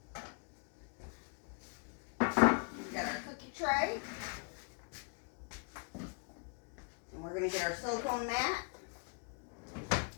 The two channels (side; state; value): right; quieter; 38.4 dB